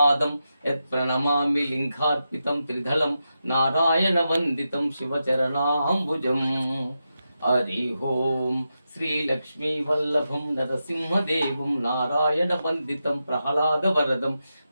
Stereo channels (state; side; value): inverted; both; correlation -0.88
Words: యత్ప్రణమామి లింగార్పితం త్రిదళం నారాయణ వందితం శివచరణాంబుజం. హరి ఓం శ్రీలక్ష్మీ వల్లభం నరసింహదేవం నారాయణ వందితం ప్రహ్లాదవరదం